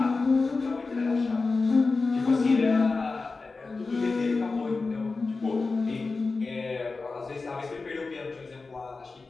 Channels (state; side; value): quieter; right; 4.0 dB